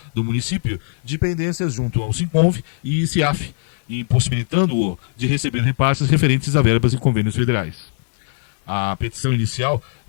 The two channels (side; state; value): right; silent; 66 dB below the other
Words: do município de pendências junto ao SINCONV e CIAF, impossibilitando-o de receber repasses referentes a verbas e convênios federais. A petição inicial